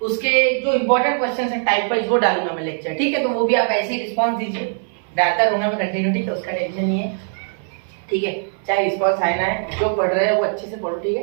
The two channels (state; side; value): silent; left; 60 dB below the other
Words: उसके जो इंपॉर्टेंट क्वेश्चंस है टाइप वाइज वो डालूंगा मैं लेक्चर। ठीक है, तो वो भी आप ऐसे ही रिस्पांस दीजिए, डालता रहूंगा मैं कंटिन्यू। ठीक है, उसका टेंशन नहीं है। ठीक है, चाहे रिस्पांस आए ना है, जो पढ़ रहे हैं वो अच्छे से पढ़ो। ठीक